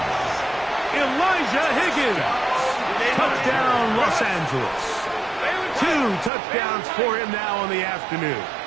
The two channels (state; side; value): drops out; left; at 6.3 s